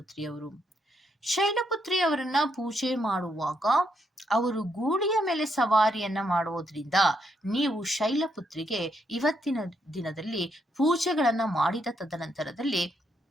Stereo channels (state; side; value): normal; both; correlation 0.77